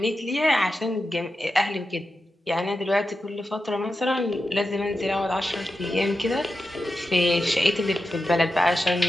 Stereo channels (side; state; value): both; normal; correlation 0.90